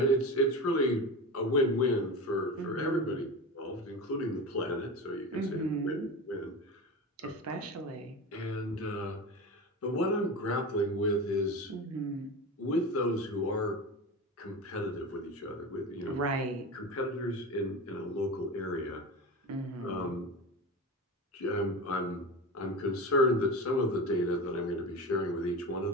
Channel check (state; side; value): normal; both; correlation 0.26